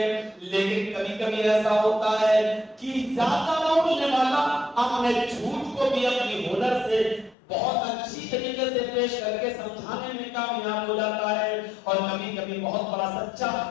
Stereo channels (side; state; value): right; drops out; at 7.4 s